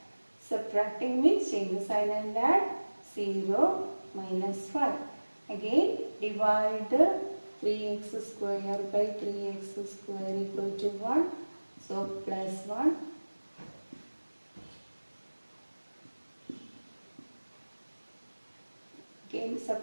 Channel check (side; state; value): both; inverted; correlation -1.00